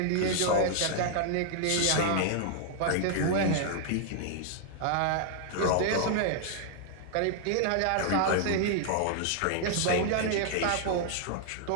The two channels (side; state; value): both; different; correlation 0.00